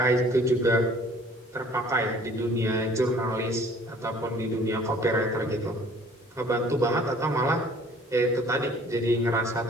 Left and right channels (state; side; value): normal; both; correlation 0.53